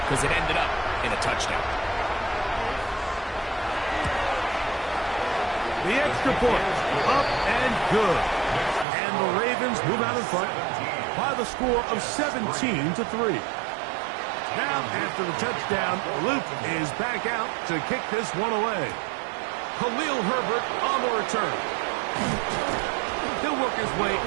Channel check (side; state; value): left; drops out; at 8.8 s